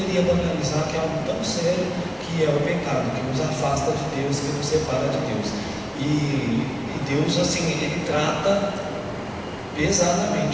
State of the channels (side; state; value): both; identical; correlation 1.00